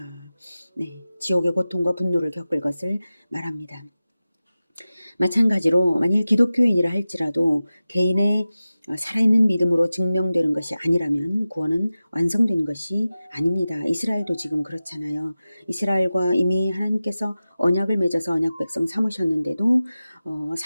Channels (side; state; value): both; inverted; correlation -0.95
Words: 네, 지옥의 고통과 분노를 겪을 것을 말합니다. 마찬가지로 만일 기독교인이라 할지라도 개인의 살아있는 믿음으로 증명되는 것이 아니라면 구원은 완성된 것이 아닙니다. 이스라엘도 지금 그렇잖아요. 이스라엘과 이미 하나님께서 언약을 맺어서 언약 백성 삼으셨는데도